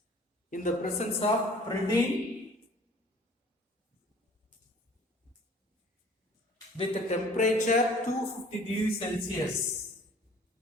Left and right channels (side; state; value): both; normal; correlation 0.51